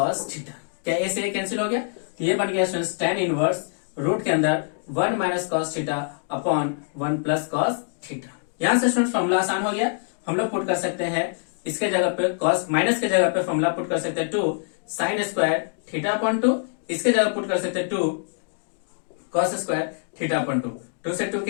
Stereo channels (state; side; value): silent; right; digital silence